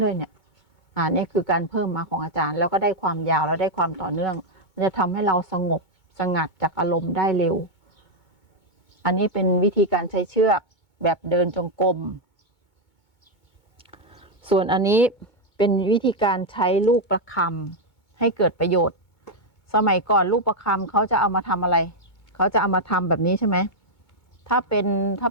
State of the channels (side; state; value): right; late; 2.2 ms